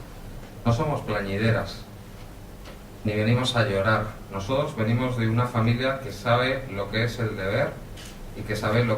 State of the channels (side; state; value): both; identical; correlation 1.00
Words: No somos plañideras, ni venimos a llorar. Nosotros venimos de una familia que sabe lo que es el deber y que sabe